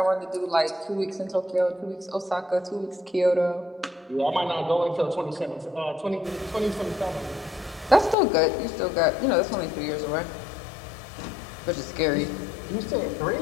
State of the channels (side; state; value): right; drops out; at 8.2 s